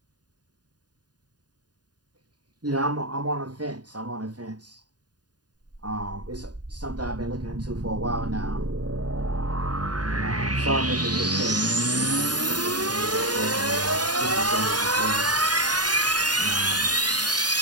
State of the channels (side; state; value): left; late; 0.69 ms